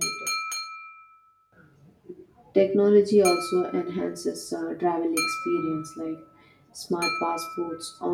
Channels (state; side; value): identical; both; correlation 1.00